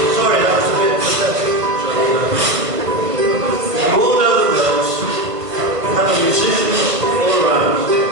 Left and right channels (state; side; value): late; left; 1.4 ms